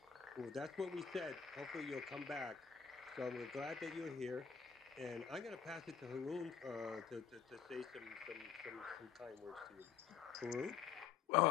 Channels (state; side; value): quieter; right; 7.4 dB